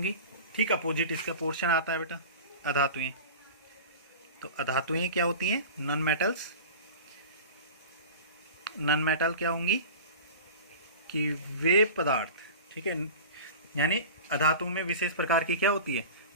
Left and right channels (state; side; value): inverted; both; correlation -0.35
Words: ठीक अपोजिट इसका पोर्शन आता है बेटा, अधातुएं। तो अधातुएं क्या होती हैं? नॉन मेटल क्या होंगी? कि वे पदार्थ, ठीक है, यानी अधातु में विशेष प्रकार की क्या होती है,